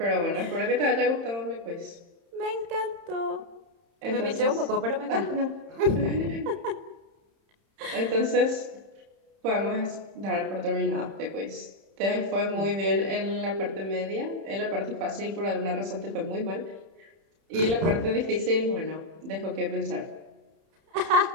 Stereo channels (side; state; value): left; late; 31 ms